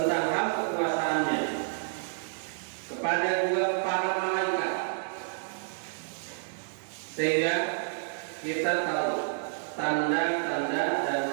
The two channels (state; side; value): silent; left; digital silence